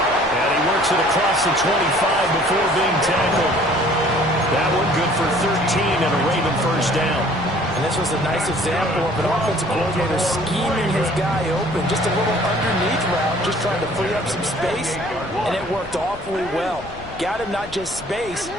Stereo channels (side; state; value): left; noise; rumble, 18 dB below the sound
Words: And he works it across the 25 before being tackled. That one good for 13 and a Raven first down. And this was a nice example of an offensive coordinator scheming his guy open. Just a little underneath route, just trying to free up some space, and it worked awfully well. Got him not just space,